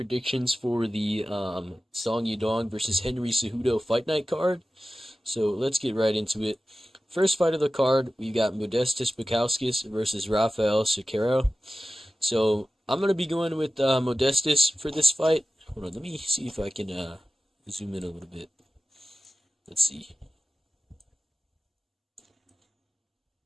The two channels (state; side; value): normal; both; correlation 0.95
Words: for the Song Yadong versus Henry Cejudo Fight Night card. So let's get right into it. First fight of the card, we got Modestas Bukauskas versus Rafael Cicero. So I'm going to be going with Modestas for this fight. Hold on, let me see if I can zoom in a little bit. Let's see.